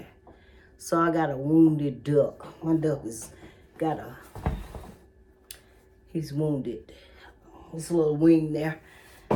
So I got a wounded duck. My duck he's wounded. This little wing there.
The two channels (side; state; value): both; identical; correlation 1.00